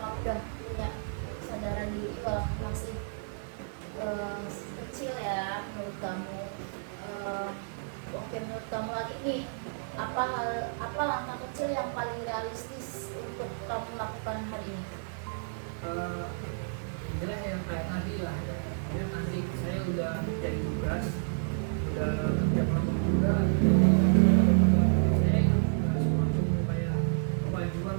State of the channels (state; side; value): silent; left; 57 dB below the other